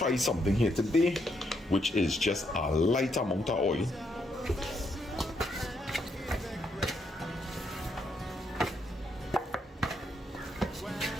something here today, which is just a light amount of oil.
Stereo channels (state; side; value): normal; both; correlation 0.77